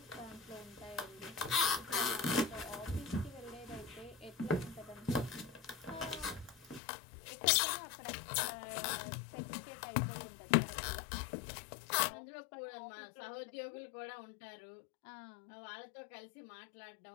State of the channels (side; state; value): right; drops out; at 6.8 s